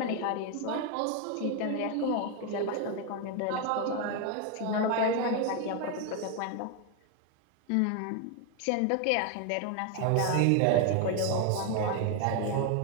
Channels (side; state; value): both; different; correlation 0.01